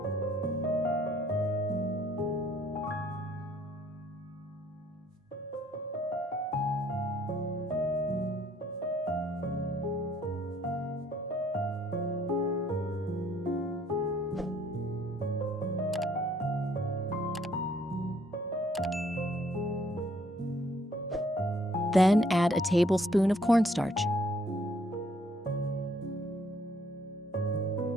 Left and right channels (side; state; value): both; normal; correlation 0.64